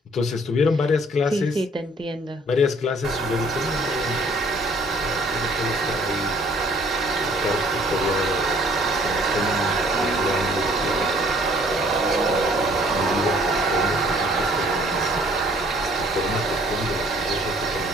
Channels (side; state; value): both; normal; correlation 0.59